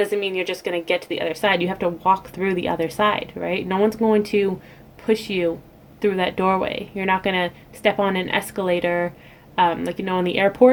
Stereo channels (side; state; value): both; identical; correlation 1.00